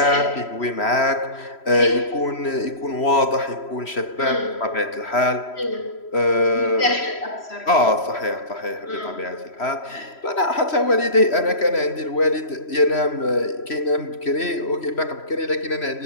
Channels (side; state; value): right; late; 3.1 ms